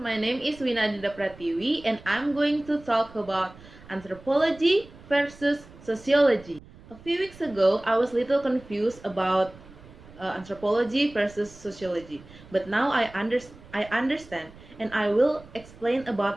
name is Winadita Pratiwi and I'm going to talk about anthropology versus sociology. A few weeks ago, I was a little confused about anthropology versus sociology, but now I understand and I will explain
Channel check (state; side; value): noise; right; rumble, 21 dB below the sound